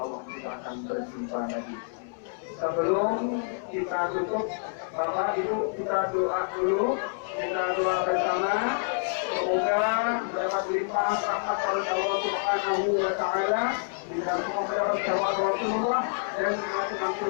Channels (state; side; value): silent; right; 59 dB below the other